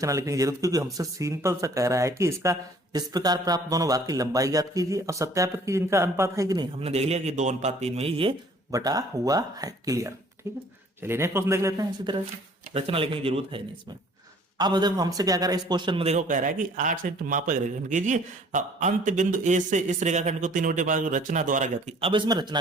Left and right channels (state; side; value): normal; both; correlation 0.55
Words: लिखने की जरूरत, क्योंकि हमसे सिंपल सा कह रहा है कि इसका इस प्रकार प्राप्त दोनों भाग की लंबाई ज्ञात कीजिए और सत्यापित कीजिए इनका अनुपात है कि नहीं। हमने देख लिया कि 2:3 में ही ये बटा हुआ है, क्लियर, ठीक है। चलिए नेक्स्ट क्वेश्चन देख लेते हैं। इसी तरह से रचना लिखने की जरूरत है नहीं इसमें। अब देखो हमसे क्या कर रहा है इस क्वेश्चन में, देखो कह रहा है कि 8 सेंटीमीटर मापा रेखाखंड कीजिए, अंत बिंदु ए से इस रेखाखंड को 3/5 रचना द्वारा ज्ञात की। अब इसमें